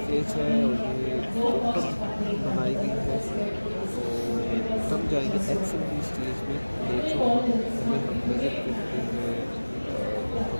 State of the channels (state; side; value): inverted; both; correlation -1.00